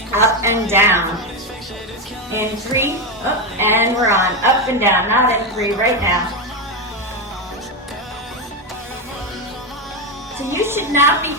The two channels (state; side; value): normal; both; correlation 0.09